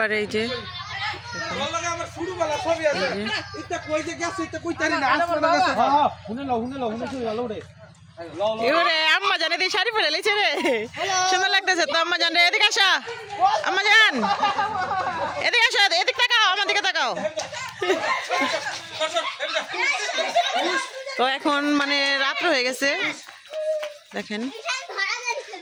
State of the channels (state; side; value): identical; both; correlation 1.00